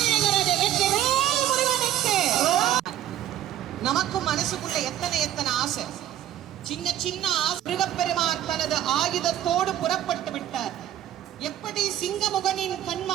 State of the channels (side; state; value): left; quieter; 12.0 dB